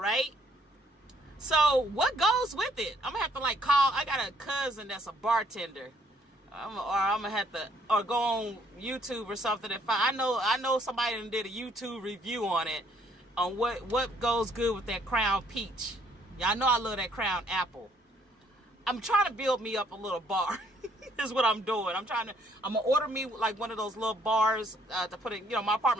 right? So what goes with it? I'm gonna have to like call. I got a cousin that's a bartender, I'm gonna have to go on YouTube or something. If I know somebody that did a YouTube review on it, on what goes good with that Crown Peach. Y'all know I love that Crown Apple. I'm trying to build me up a little bar. Is what I'm doing. I'm gonna order me like one of those little bars to put in. You know, my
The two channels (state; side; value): normal; both; correlation 0.65